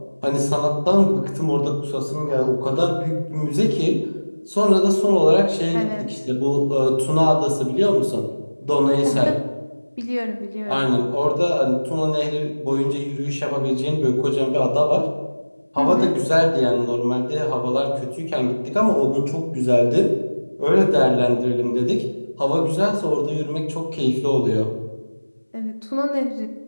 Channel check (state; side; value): inverted; both; correlation -1.00